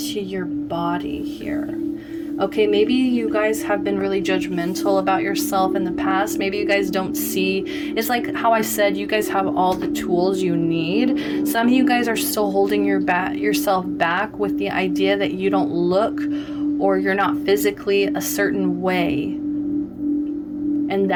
your body here. Okay, maybe you guys have been really judgmental about yourself in the past. Maybe you guys don't see, it's like how I said, you guys have all the tools you need. Some of you guys are still holding yourself back with the idea that you don't look or you're not physically a certain way. And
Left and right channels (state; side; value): identical; both; correlation 1.00